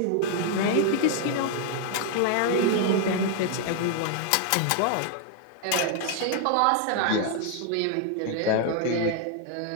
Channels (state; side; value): different; both; correlation 0.00